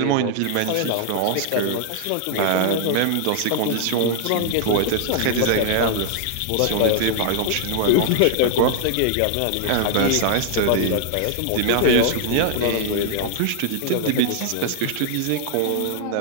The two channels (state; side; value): different; both; correlation 0.00